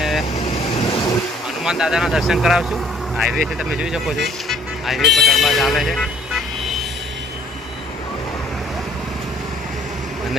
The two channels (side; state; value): both; normal; correlation 0.59